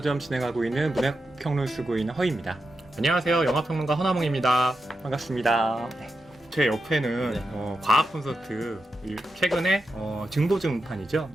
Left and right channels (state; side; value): normal; both; correlation 0.88